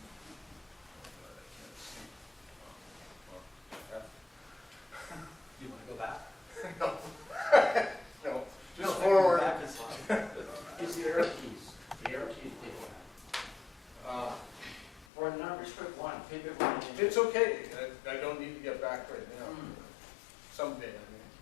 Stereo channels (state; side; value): drops out; right; at 15.1 s